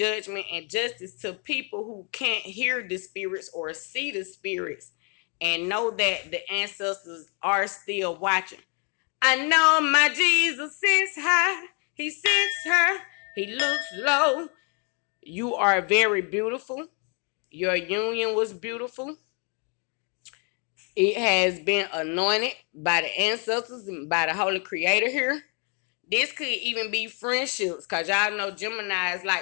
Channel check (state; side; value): quieter; right; 36.6 dB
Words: and justice to people who can't hear the spirits or see the spirits, and know that the ancestors are still watching. I know my Jesus sits high, he sits high, he looks low. You are very beautiful. Your union was beautiful. It has been anointed by the ancestors and by the Holy Creator here. This could even be friendships, because y'all know Gemini is